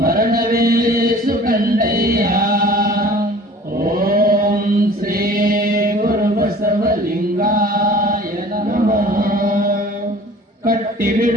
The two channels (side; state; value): both; normal; correlation 0.47